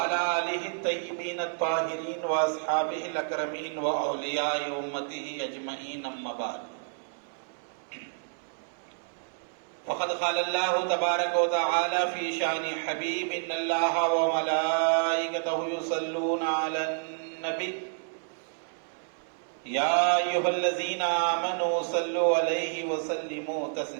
آله الطيبين الطاهرين وأصحابه الأكرمين وأولياء أمته أجمعين أما بعد فقد قال الله تبارك وتعالى في شأن حبيب إن الله وملائكته يصلون على النبي يا أيها الذين آمنوا صلوا عليه وسلموا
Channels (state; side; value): silent; left; digital silence